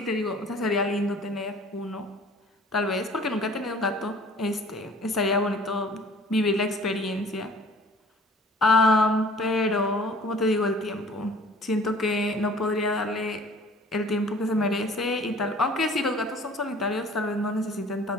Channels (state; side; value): normal; both; correlation 0.50